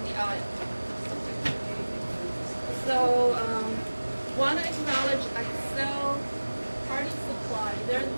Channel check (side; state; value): both; inverted; correlation -1.00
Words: the aisle. So want to acknowledge Accel Party Supply. They're the